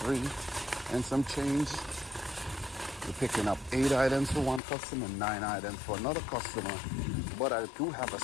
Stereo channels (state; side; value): drops out; right; at 4.6 s